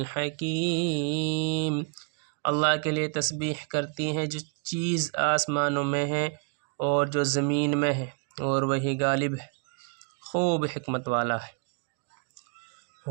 اللہ کے لیے تسبیح کرتی ہیں جو چیز آسمانوں میں ہے اور جو زمین میں ہے، اور وہی غالب ہے، خوب حکمت والا ہے۔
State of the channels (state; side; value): quieter; left; 39.1 dB